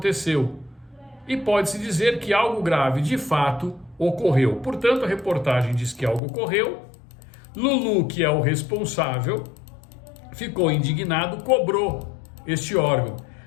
E pode-se dizer que algo grave de fato ocorreu. Portanto, a reportagem diz que algo ocorreu. Lulu, que é o responsável, ficou indignado, cobrou este órgão.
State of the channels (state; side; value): drops out; right; at 6.2 s